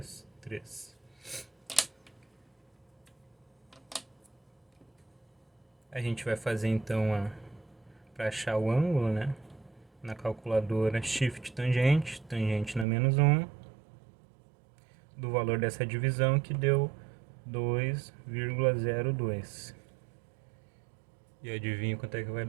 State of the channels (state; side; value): drops out; left; at 12.9 s